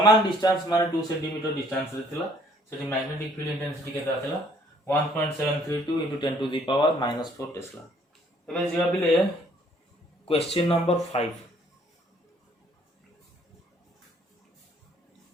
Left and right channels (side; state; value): both; normal; correlation 0.62